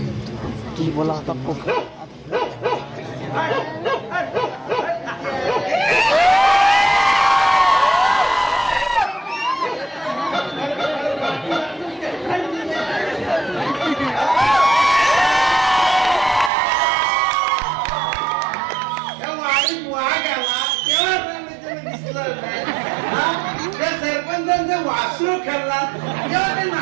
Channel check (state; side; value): drops out; left; at 16.5 s